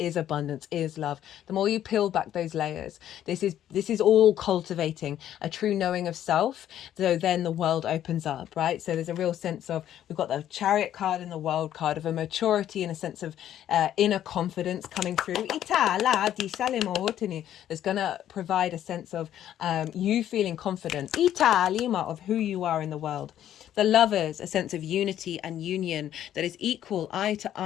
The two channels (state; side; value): quieter; right; 11.3 dB